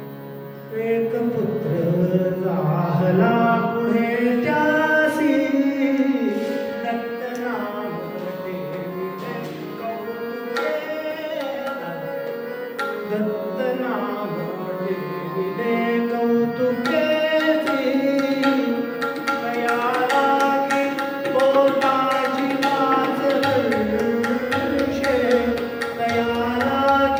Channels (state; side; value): identical; both; correlation 1.00